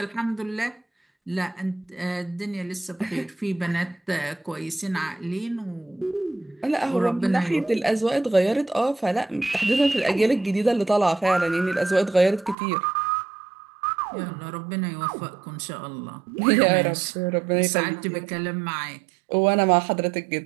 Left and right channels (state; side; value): drops out; left; at 12.6 s